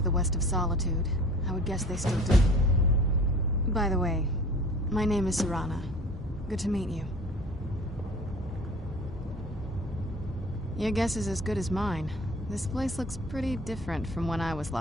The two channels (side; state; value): both; normal; correlation 0.44